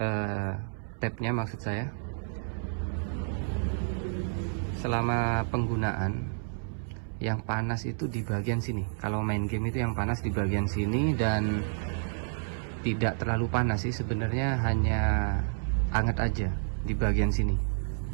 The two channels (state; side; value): silent; left; 58 dB below the other